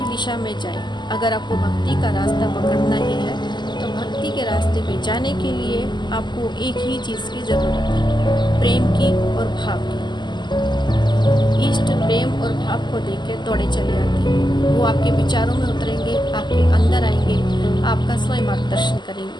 दिशा में जाएं। अगर आपको भक्ति का रास्ता पकड़ना ही है तो भक्ति के रास्ते में जाने के लिए आपको एक ही चीज़ की ज़रूरत है, प्रेम की और भाव की। इष्ट प्रेम और भाव को देख के दौड़े चले आते हैं। वो आपके विचारों में उतरेंगे, आपके अंदर आएंगे, आपका स्वयं मार्गदर्शन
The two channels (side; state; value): right; late; 0.21 ms